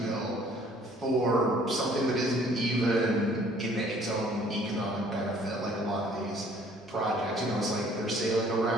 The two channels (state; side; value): normal; both; correlation 0.57